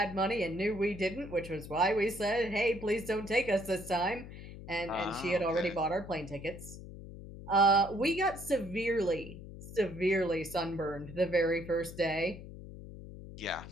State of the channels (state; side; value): noise; left; hum, 13 dB below the sound